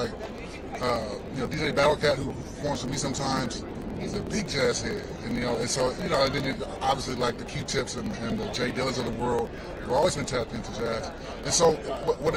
DJ Battlecat, who performs with me sometimes, he's a big jazz head, and so and then obviously like the Q-Tips and the Jay Dillas of the world have always been tapped into jazz. And so what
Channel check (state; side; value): identical; both; correlation 1.00